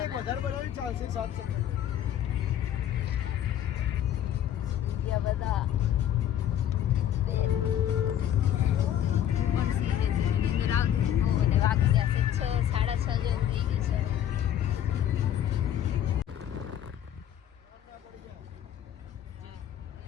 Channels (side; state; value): right; quieter; 10.6 dB